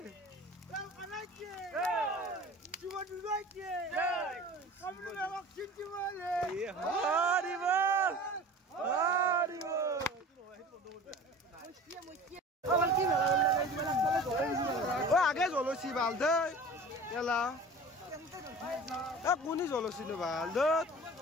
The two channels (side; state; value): both; normal; correlation 0.40